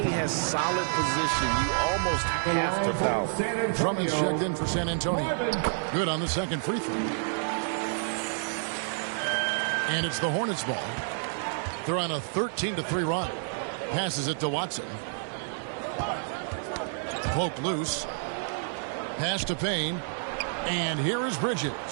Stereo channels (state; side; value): silent; left; digital silence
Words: has solid position, you almost have to foul. Drummond's checked in for San Antonio. Good on the second free throw. And it's the Hornets ball. They're on a 13-3 run. Passes it to Watson. Poke loose. Pass to Payne. And here is Bridges.